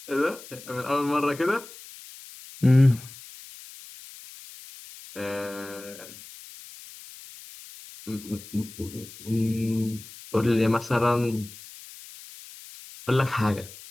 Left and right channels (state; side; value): noise; left; hiss, 17 dB below the sound